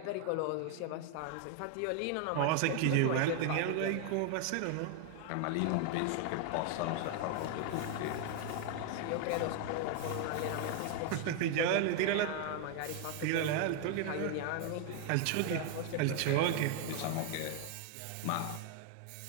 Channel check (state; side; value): different; both; correlation 0.00